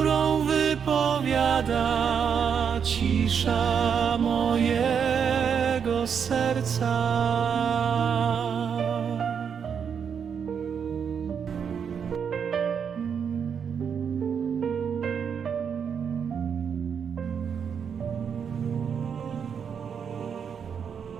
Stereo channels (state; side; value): quieter; left; 7.2 dB